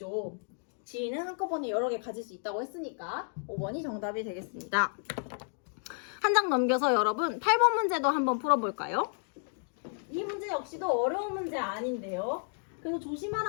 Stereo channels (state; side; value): silent; right; 55 dB below the other